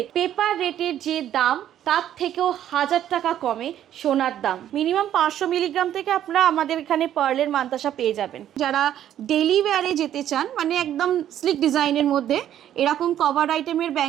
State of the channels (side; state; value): left; quieter; 11.1 dB